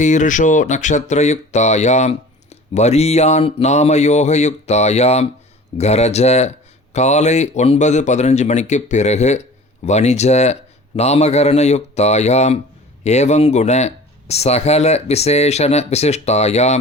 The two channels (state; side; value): normal; both; correlation 0.42